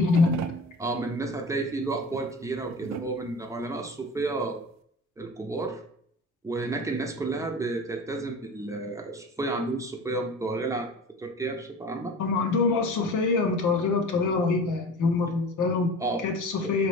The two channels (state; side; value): normal; both; correlation 0.37